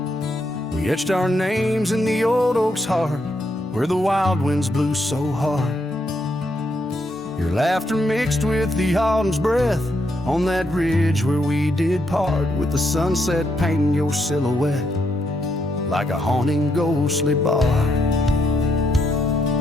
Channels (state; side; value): normal; both; correlation 0.77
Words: We etched our names in the old oak's heart, where the wild winds blew so hard. Your laughter mixed with the autumn's breath on that ridge where we did part, with the sunset painting your silhouette like a haunting ghostly bar.